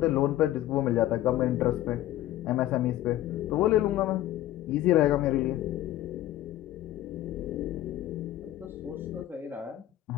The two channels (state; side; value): quieter; right; 14.0 dB